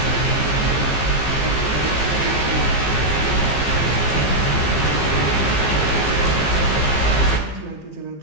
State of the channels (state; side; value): late; right; 15 ms